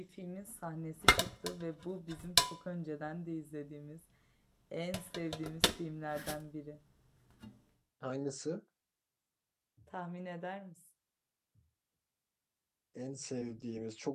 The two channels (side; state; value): both; identical; correlation 1.00